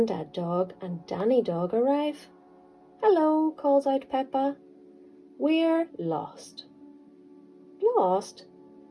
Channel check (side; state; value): both; identical; correlation 1.00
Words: Dog and Danny Dog arrive. Hello, calls out Peppa. We're lost. Lost?